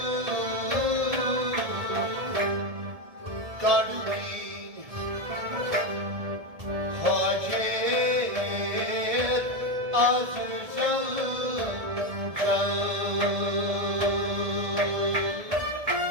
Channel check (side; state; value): left; late; 1.7 ms